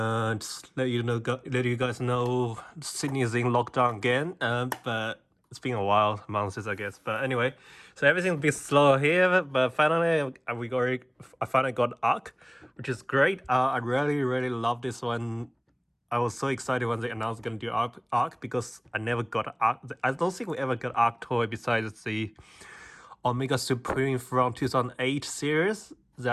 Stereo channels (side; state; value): both; identical; correlation 1.00